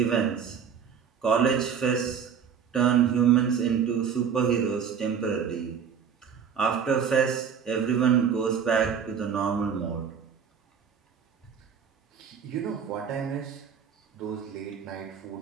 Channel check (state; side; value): quieter; left; 7.2 dB